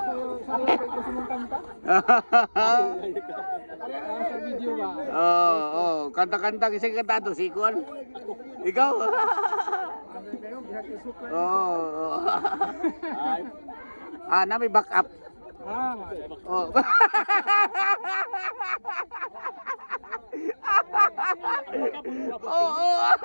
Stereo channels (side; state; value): both; inverted; correlation -1.00